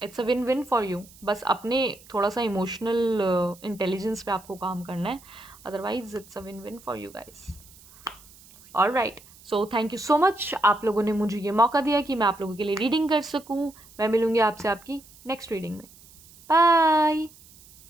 it's a win win for you. बस अपने थोड़ा सा इमोशनल इंटेलिजेंस पे आपको काम करना है, otherwise it's a win win for you guys. Alright, so thank you so much, आप लोगों ने मुझे ये मौका दिया कि मैं आप लोगों के लिए रीडिंग कर सकूँ। मैं मिलूँगी आपसे आपकी नेक्स्ट रीडिंग में। बाय।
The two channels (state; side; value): noise; right; hiss, 24 dB below the sound